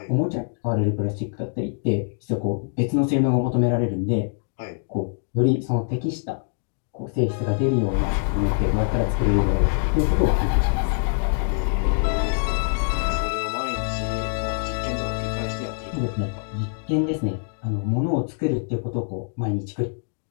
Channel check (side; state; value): right; silent; 61 dB below the other